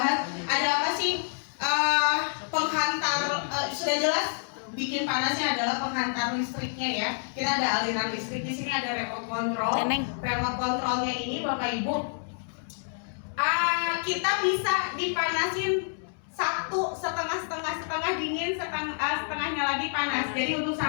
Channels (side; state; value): right; silent; digital silence